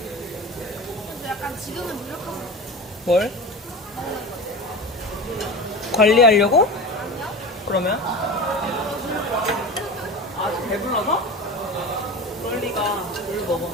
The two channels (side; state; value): both; normal; correlation 0.30